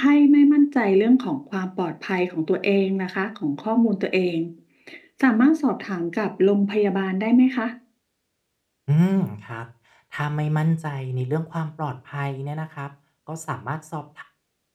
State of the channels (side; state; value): both; identical; correlation 1.00